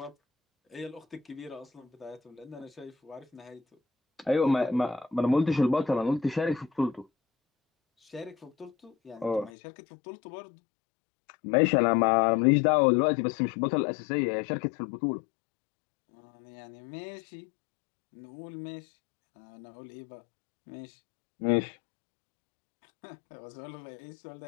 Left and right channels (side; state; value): right; drops out; at 9.5 s